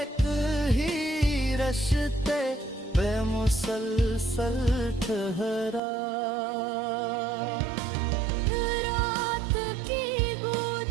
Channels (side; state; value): left; drops out; at 5.8 s